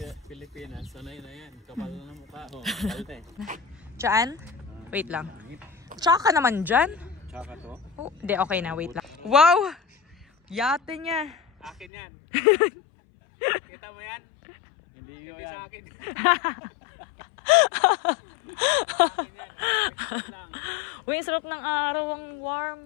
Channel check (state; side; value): drops out; right; at 11.9 s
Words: Pilipinas, sanay na yan. Kapal na mukha. Kalte. Diyan? Wait lang. Tsaka ka naman dyan? Tsaka to? Hindi, okay na. Wait lang. Wow! Yate niya. Akin yan. Kita mo yan? Hindi sa akin. Uy, ang sarap ng araw, ang warm.